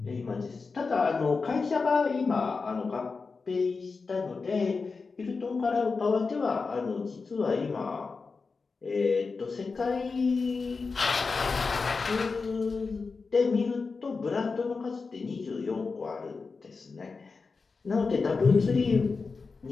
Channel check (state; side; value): quieter; right; 4.5 dB